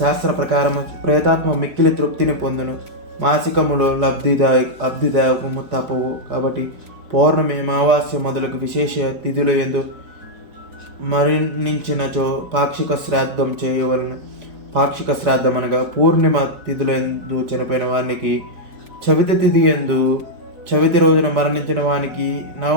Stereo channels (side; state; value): left; late; 4.4 ms